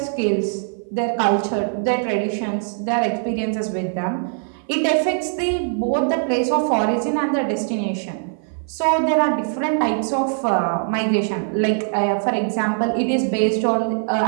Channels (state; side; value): silent; left; 57 dB below the other